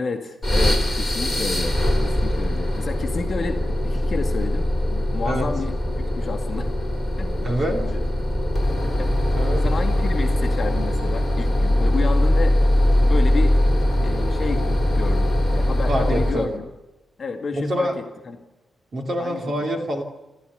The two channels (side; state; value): both; normal; correlation 0.95